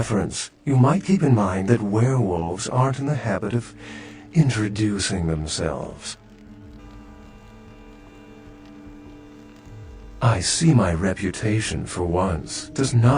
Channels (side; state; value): both; identical; correlation 1.00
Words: you might keep in mind that werewolves aren't in the habit of introducing themselves. I see my reputation, for once, does